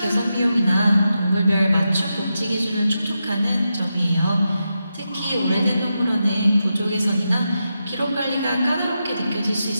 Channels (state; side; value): inverted; both; correlation -0.88